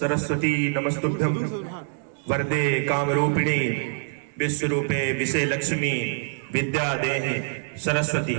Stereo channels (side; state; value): left; silent; digital silence